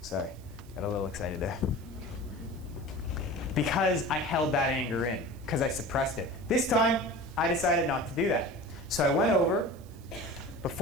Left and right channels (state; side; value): noise; right; hiss, 26 dB below the sound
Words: Sorry, got a little excited there. Because I held that anger in, because I suppressed it. This time, I decided not to do that. So I went over